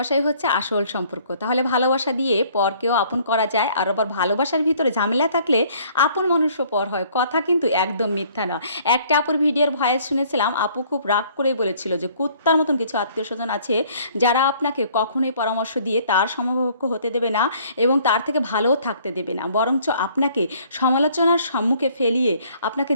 হচ্ছে আসল সম্পর্ক। তাহলে ভালোবাসা দিয়ে পরকেও আপন করা যায়। আর আবার ভালোবাসার ভিতরে ঝামেলা থাকলে আপন মানুষও পর হয়। কথা কিন্তু একদম মিথ্যা নয়। একটা আপুর ভিডিওর ভয়েস শুনেছিলাম, আপু খুব রাগ করেই বলেছিল যে, কুত্তার মতন কিছু আত্মীয়স্বজন আছে, যারা আপনাকে কখনোই পরামর্শ দিয়ে তার সমকক্ষ হতে দেবে না এবং তার থেকে ভালোও থাকতে দেবে না। বরঞ্চ আপনাকে সমালোচনার সম্মুখে ফেলিয়ে আপনাকে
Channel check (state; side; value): inverted; both; correlation -0.59